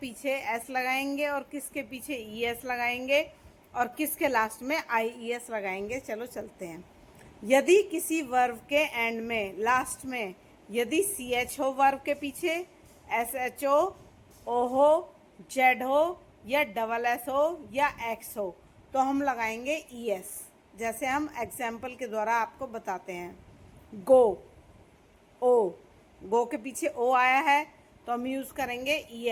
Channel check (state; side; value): identical; both; correlation 1.00